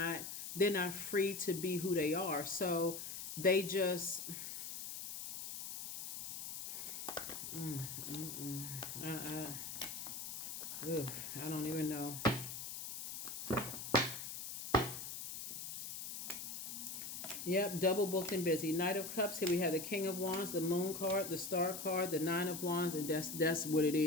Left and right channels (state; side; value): noise; left; hiss, 7 dB below the sound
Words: not free to be who they are. So they just... I don't even know. Yep, double booked and busy. Knight of Cups. Here we have the King of Wands, the Moon card, the Star card, the Nine of Wands, and that's what it